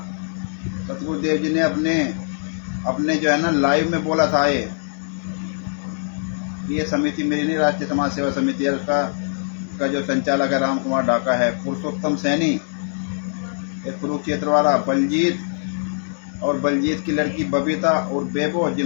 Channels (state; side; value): silent; right; digital silence